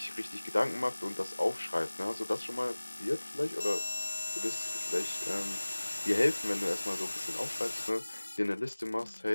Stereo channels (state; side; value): inverted; both; correlation -1.00